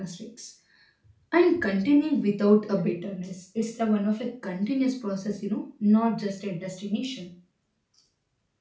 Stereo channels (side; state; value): both; identical; correlation 1.00